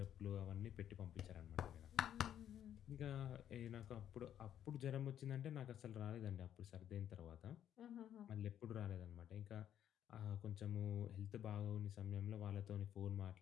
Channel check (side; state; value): right; quieter; 10.3 dB